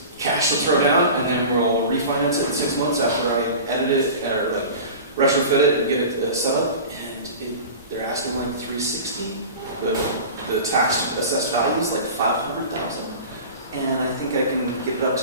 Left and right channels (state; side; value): inverted; both; correlation -0.35